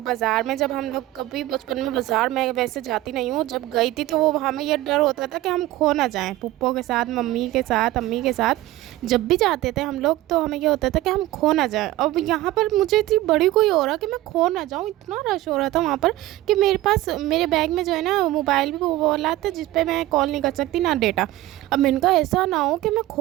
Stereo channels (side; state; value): left; quieter; 16.4 dB